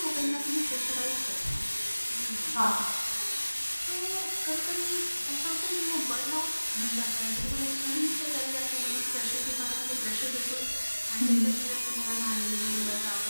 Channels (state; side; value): inverted; both; correlation -1.00